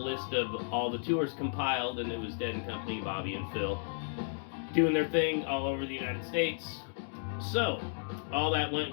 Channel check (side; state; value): right; silent; digital silence